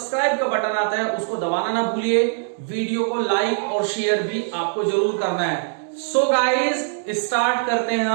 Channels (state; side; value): silent; left; 64 dB below the other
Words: का बटन आता है उसको दबाना ना भूलिए। वीडियो को लाइक और शेयर भी आपको जरूर करना है। सो गाइस, स्टार्ट करते हैं